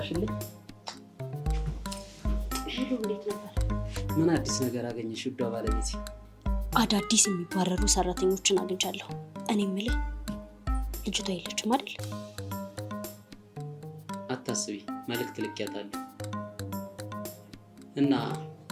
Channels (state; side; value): identical; both; correlation 1.00